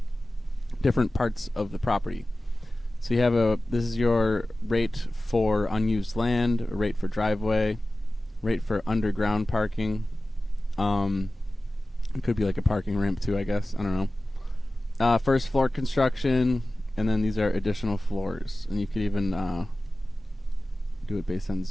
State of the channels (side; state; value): both; normal; correlation 0.96